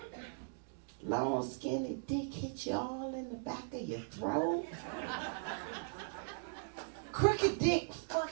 Long, skinny dick hit you all in the back of your throat. Crooked dick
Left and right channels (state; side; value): silent; left; digital silence